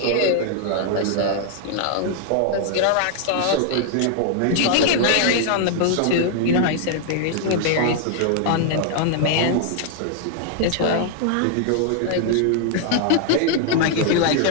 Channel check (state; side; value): different; both; correlation 0.00